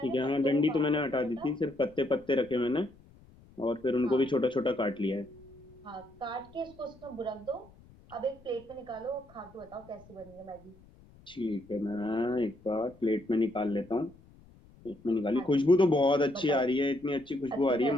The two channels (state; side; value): noise; left; rumble, 25 dB below the sound